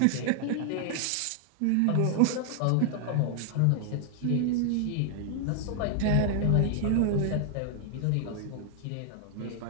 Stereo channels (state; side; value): different; both; correlation 0.00